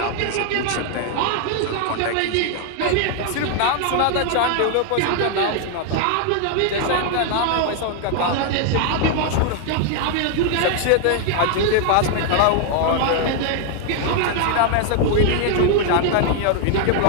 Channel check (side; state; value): both; different; correlation 0.00